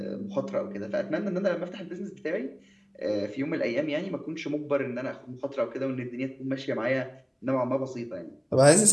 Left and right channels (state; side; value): identical; both; correlation 1.00